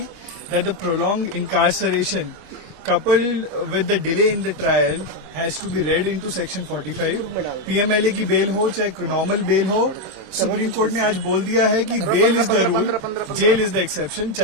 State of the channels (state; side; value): late; left; 27 ms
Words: that the prolonged incarceration coupled with the delay in the trial has to be read into section 45। PMLA की बेल हो चाहे नॉर्मल बेल हो, सुप्रीम कोर्ट ने आज बोल दिया है कि bail is the rule, jail is the exception.